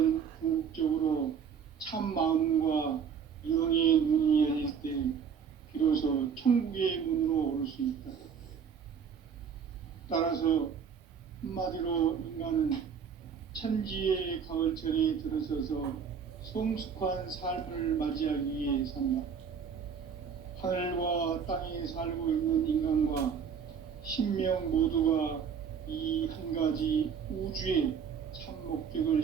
궁극적으로 참 마음과 영의 눈이 열릴 때 비로소 천국의 문으로 올 수 있다. 따라서 한마디로 인간은 천지의 가을철에 들어서서 성숙한 삶을 맞이하기 위해 산다. 하늘과 땅에 살고 있는 인간과 신명 모두가 이 한 가지 우주의 참 목적을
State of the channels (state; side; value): quieter; left; 7.0 dB